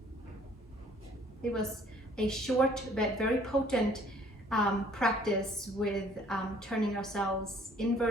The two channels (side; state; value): both; normal; correlation 0.58